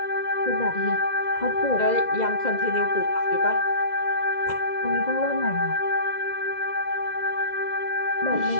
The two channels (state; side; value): late; right; 2.0 ms